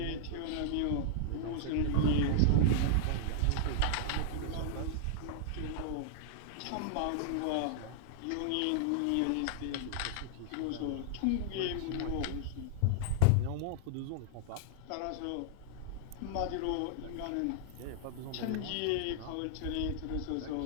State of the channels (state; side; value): different; both; correlation -0.01